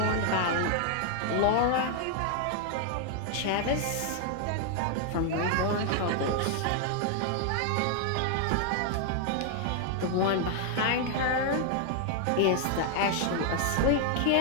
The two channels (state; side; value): different; both; correlation 0.00